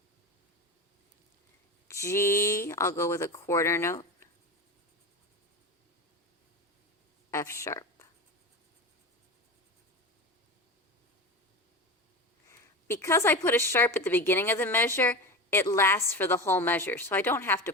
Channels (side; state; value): both; normal; correlation 0.26